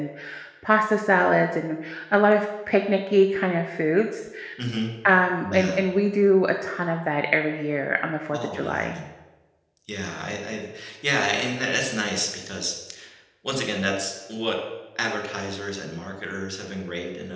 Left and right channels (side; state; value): both; identical; correlation 1.00